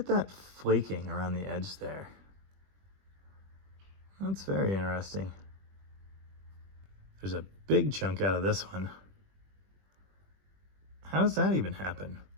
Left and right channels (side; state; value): left; late; 21 ms